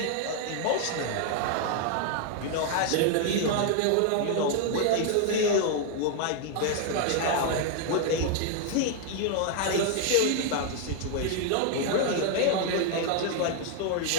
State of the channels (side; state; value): both; different; correlation 0.00